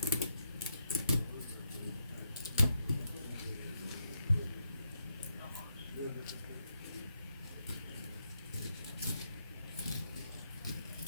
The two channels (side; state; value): both; inverted; correlation -0.79